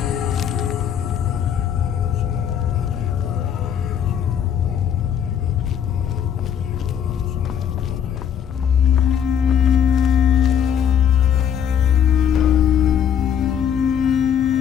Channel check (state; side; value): quieter; right; 8.7 dB